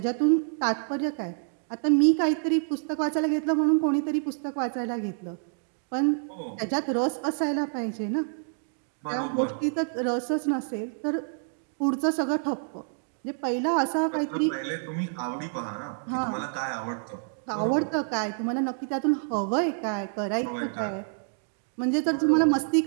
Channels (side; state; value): left; silent; digital silence